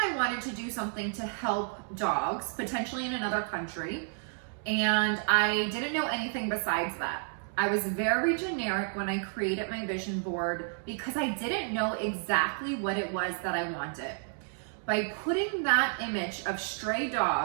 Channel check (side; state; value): left; silent; 57 dB below the other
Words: wanted to do something to help dogs, potentially in another country, and I didn't know anything besides that. I was very generic when I created my vision board because I didn't know exactly what it was that I wanted. By putting that image of stray